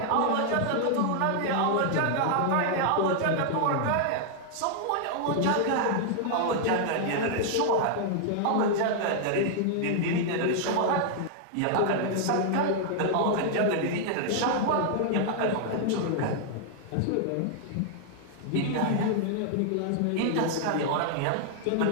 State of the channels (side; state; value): both; different; correlation 0.00